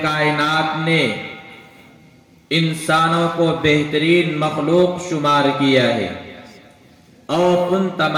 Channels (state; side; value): identical; both; correlation 1.00